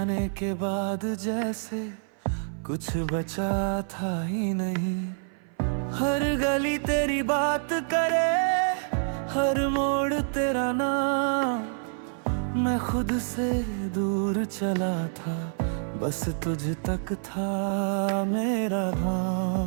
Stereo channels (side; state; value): left; silent; 57 dB below the other